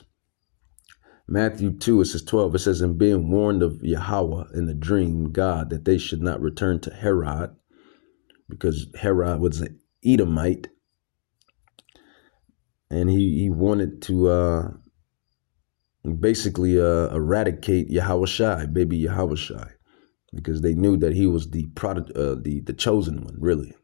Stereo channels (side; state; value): right; silent; 56 dB below the other